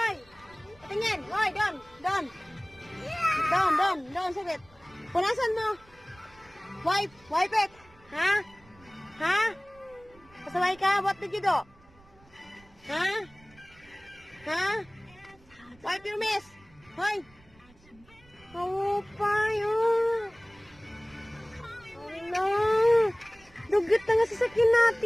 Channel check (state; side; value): noise; right; rumble, 27 dB below the sound